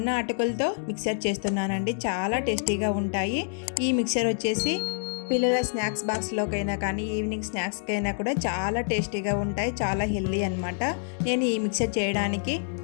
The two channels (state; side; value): silent; right; digital silence